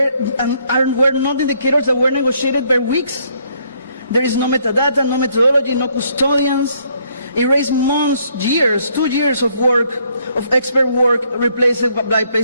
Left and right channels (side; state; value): both; inverted; correlation -0.69